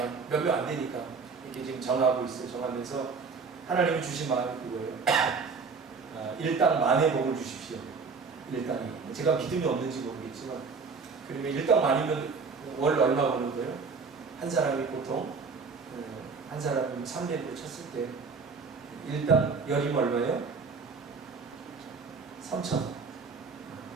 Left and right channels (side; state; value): left; quieter; 4.9 dB